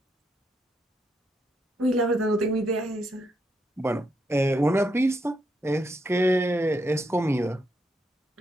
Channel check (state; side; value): normal; both; correlation 0.79